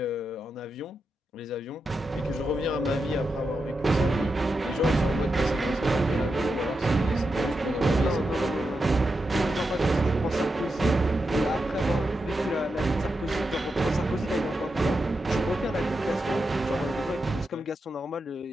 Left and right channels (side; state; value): both; normal; correlation 0.87